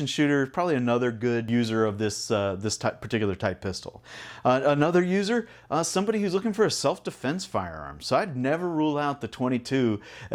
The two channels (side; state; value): both; identical; correlation 1.00